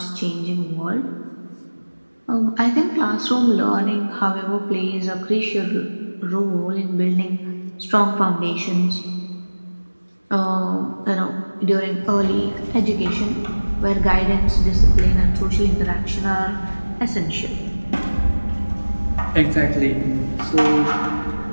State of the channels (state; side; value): inverted; both; correlation -1.00